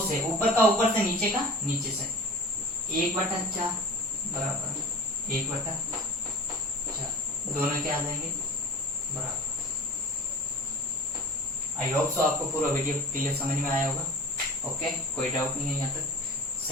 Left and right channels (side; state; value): both; normal; correlation 0.40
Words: से, ऊपर का ऊपर से, नीचे का नीचे से, 1/4 बराबर 1/4। दोनों क्या आ जाएंगे बराबर। आई होप सो आपको पूरा वीडियो क्लियर समझ में आया होगा। ओके, कोई डाउट नहीं है यहाँ तक।